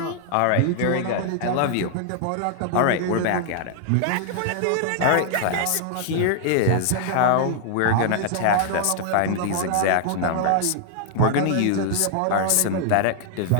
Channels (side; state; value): both; different; correlation -0.01